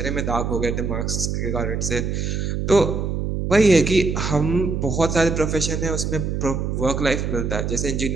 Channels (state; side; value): noise; right; hum, 1 dB below the sound